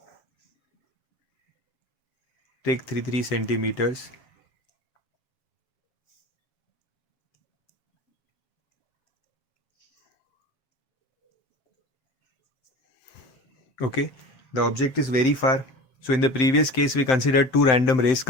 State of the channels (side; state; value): right; late; 7.7 ms